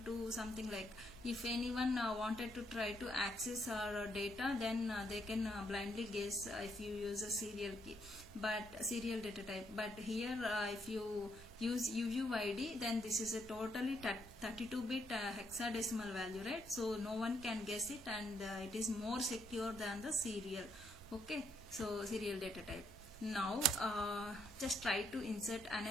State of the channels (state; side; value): normal; both; correlation 0.74